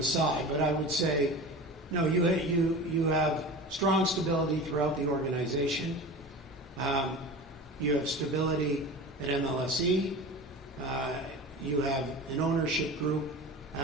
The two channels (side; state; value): both; normal; correlation 0.33